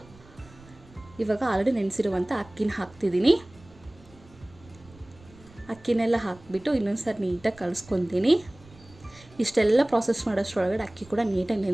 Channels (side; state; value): right; noise; rumble, 24 dB below the sound